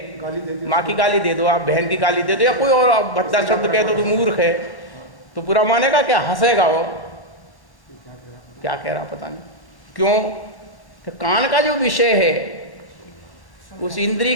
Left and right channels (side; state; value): right; late; 1.1 ms